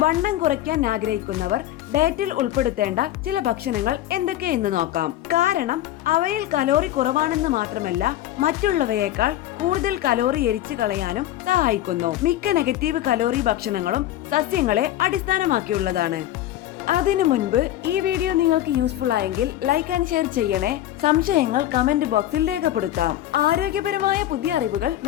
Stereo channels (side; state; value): right; quieter; 13.4 dB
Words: വണ്ണം കുറയ്ക്കാൻ ആഗ്രഹിക്കുന്നവർ ഡയറ്റിൽ ഉൾപ്പെടുത്തേണ്ട ചില ഭക്ഷണങ്ങൾ എന്തൊക്കെയെന്ന് നോക്കാം. കാരണം അവയിൽ കലോറി കുറവാണെന്ന് മാത്രമല്ല, മറ്റുള്ളവയേക്കാൾ കൂടുതൽ കലോറി എരിച്ചു കളയാനും സഹായിക്കുന്നു. മിക്ക നെഗറ്റീവ് കലോറി ഭക്ഷണങ്ങളും സസ്യങ്ങളെ അടിസ്ഥാനമാക്കിയുള്ളതാണ്. അതിനു മുൻപ് ഈ വീഡിയോ നിങ്ങൾക്ക് യൂസ്ഫുൾ ആയെങ്കിൽ ലൈക്ക് ആൻഡ് ഷെയർ ചെയ്യണേ. സംശയങ്ങൾ കമന്റ് ബോക്സിൽ രേഖപ്പെടുത്താം. ആരോഗ്യപരമായ പുതിയ അറിവുകൾ